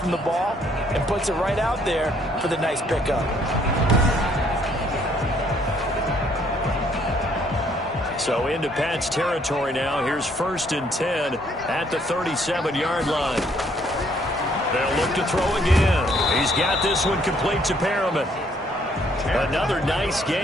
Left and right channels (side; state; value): both; normal; correlation 0.66